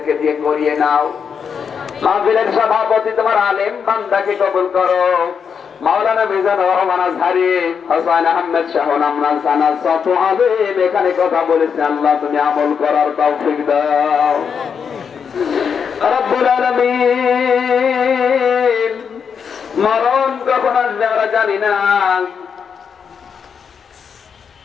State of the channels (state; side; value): quieter; right; 6.7 dB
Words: দিয়ে করিয়ে নাও। মাহফিলের সভাপতি তোমার আলেম বান্দাকে কবুল করো। মাওলানা মিজানুর রহমান আজহারী, হোসেন আহমেদ শাহন, আমরান সানা, সত আলেম এখানে কথা বলেছে, আল্লাহ তুমি আমল করার তৌফিক দাও। রব্বুল আলামিন মরণ কখন আসবে আমরা জানি না,